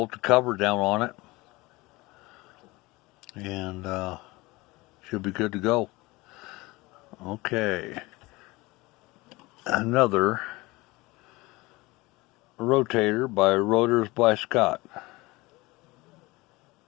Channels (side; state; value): right; quieter; 21.9 dB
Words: the cover down on it. and should be good to go. Okay, another Rotator by Rotors by Scott.